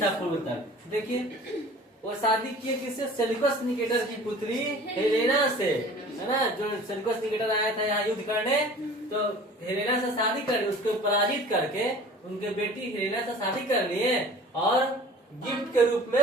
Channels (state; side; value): normal; both; correlation 0.45